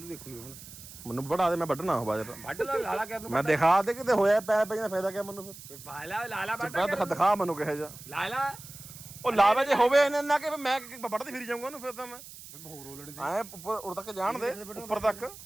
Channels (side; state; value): right; noise; hiss, 16 dB below the sound